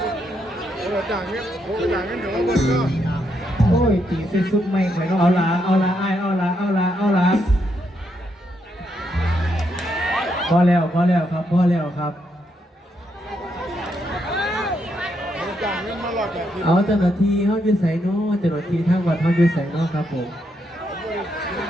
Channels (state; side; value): normal; both; correlation 0.78